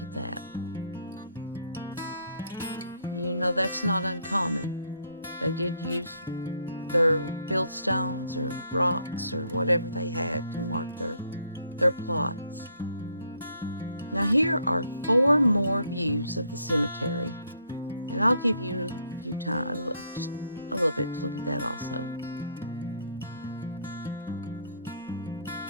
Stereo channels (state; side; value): inverted; both; correlation -0.69